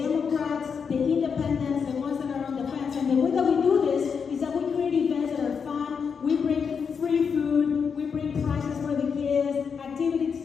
the independents, the ones that are on the fence. And the way that we do this is that we create events that are fun. We bring free food. We bring prizes for the kids,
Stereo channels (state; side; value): quieter; right; 6.2 dB